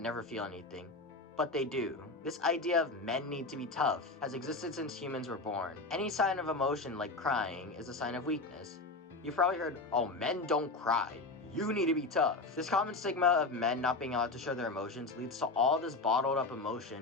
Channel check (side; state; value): right; quieter; 3.4 dB